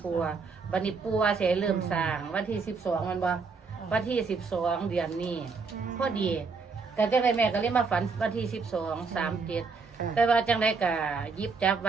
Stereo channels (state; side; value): quieter; left; 4.8 dB